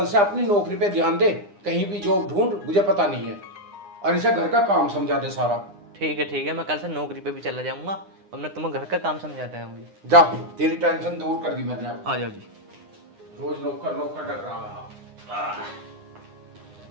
से अपनी नौकरी पे ध्यान दे, कहीं भी जॉब ढूंढ, मुझे पता नहीं है। और इसे घर का काम समझा दे सारा। ठीक है, मैं कल से नौकरी पे भी चला जाऊंगा और मैं तुम्हें घर का काम समझाता है मुझे। जा, तेरी टेंशन दूर कर दी मैंने अब। आ जाओ जी। रोज नौकर नौकर डर रहा है।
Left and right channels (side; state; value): left; late; 9.8 ms